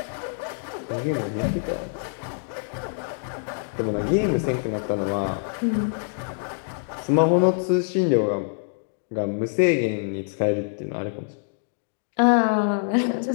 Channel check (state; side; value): silent; right; digital silence